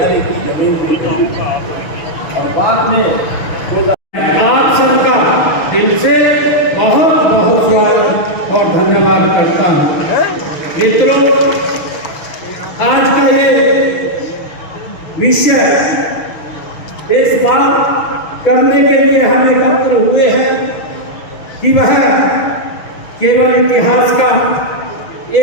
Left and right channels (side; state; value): right; late; 6.0 ms